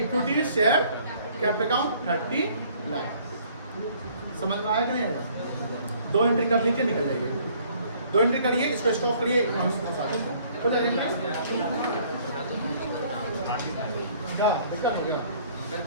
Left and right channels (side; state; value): both; inverted; correlation -0.58